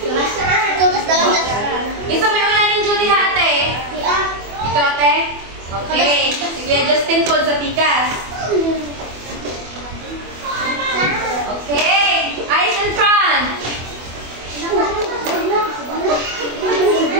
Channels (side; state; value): left; late; 24 ms